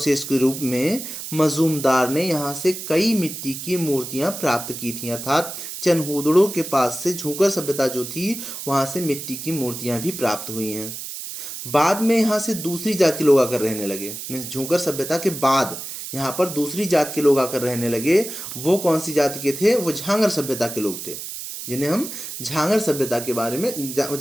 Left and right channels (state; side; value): noise; right; hiss, 8 dB below the sound